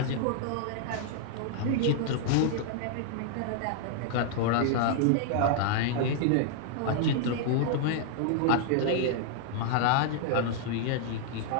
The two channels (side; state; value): both; different; correlation -0.01